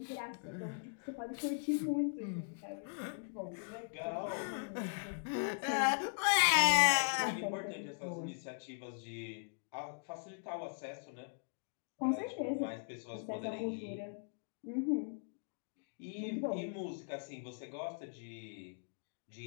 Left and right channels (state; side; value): silent; right; digital silence